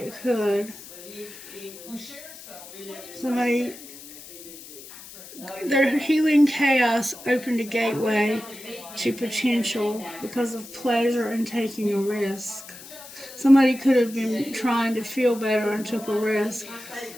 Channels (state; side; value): noise; left; hiss, 16 dB below the sound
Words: could. Somebody, their healing chaos opened a gateway to potential because of pleasure and taking a risk. Somebody could have been trying to feel better and took a risk,